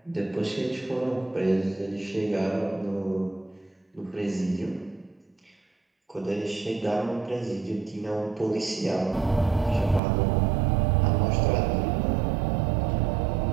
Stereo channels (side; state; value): left; drops out; at 10.0 s